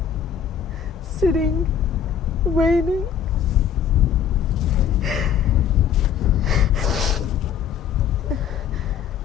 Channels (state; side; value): quieter; right; 8.2 dB